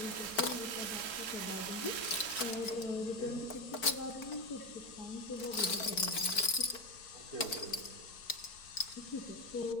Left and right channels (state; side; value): late; right; 4.5 ms